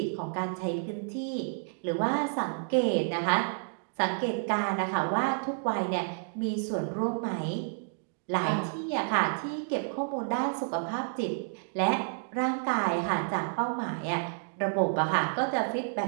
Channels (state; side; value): silent; left; digital silence